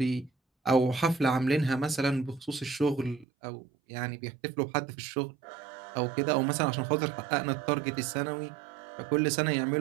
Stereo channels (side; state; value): left; drops out; at 3.2 s